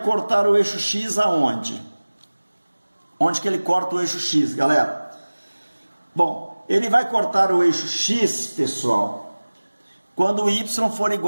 cortar o eixo X aonde? Onde que ele corta o eixo X, galera? Bom, ele vai cortar o eixo X, pessoal, quando o Y for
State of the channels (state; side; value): inverted; both; correlation -1.00